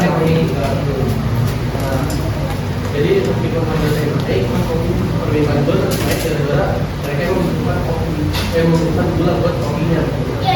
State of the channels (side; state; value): both; identical; correlation 1.00